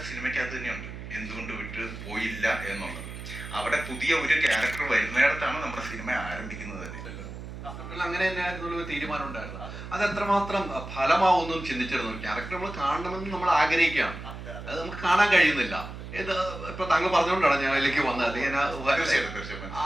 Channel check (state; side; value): noise; right; hum, 10 dB below the sound